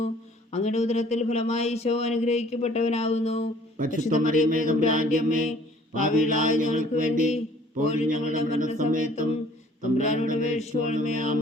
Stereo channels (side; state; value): both; normal; correlation 0.55